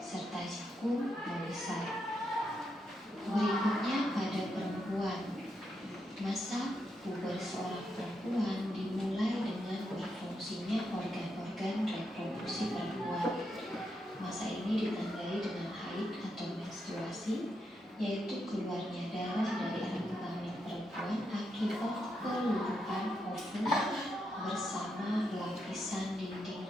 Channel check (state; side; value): normal; both; correlation 0.82